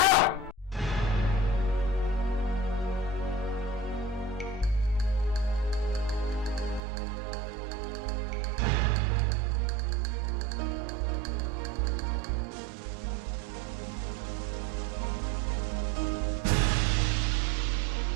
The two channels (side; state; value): left; drops out; at 6.8 s